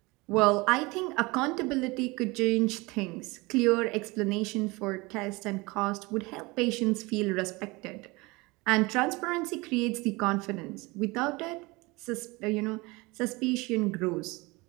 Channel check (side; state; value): left; quieter; 24.1 dB